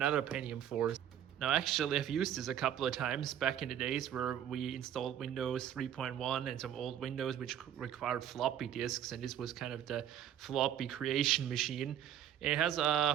Pentium 4. Now actually I've used this a couple of times back in the days where we installed Windows 3.1 and some old Windows which required floppy disks, and this was kind of the floppy creation machine. It has a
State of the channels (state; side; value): quieter; left; 10.2 dB